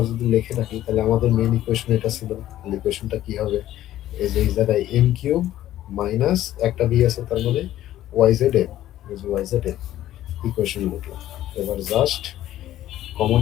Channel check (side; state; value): right; quieter; 13.4 dB